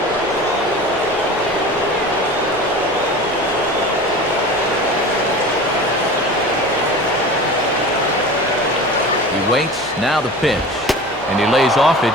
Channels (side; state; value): both; normal; correlation 0.35